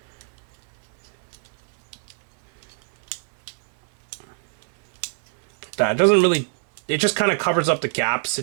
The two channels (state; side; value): silent; left; 61 dB below the other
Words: That doesn't really, it just kind of covers up the gaps. It